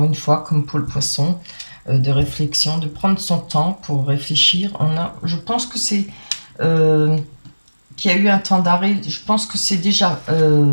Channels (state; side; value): inverted; both; correlation -1.00